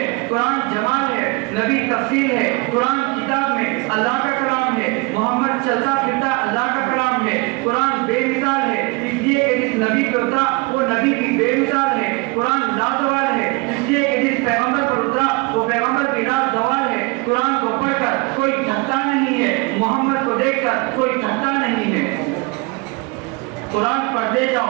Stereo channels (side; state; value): left; quieter; 27.5 dB